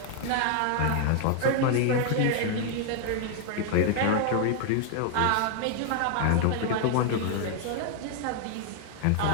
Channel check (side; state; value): both; different; correlation 0.00